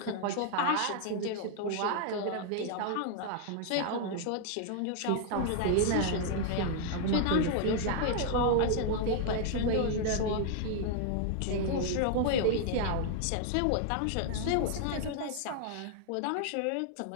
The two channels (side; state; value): both; different; correlation 0.00